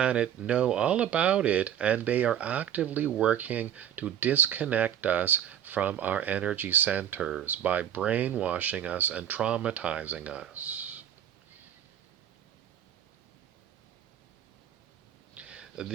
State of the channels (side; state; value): left; quieter; 10.1 dB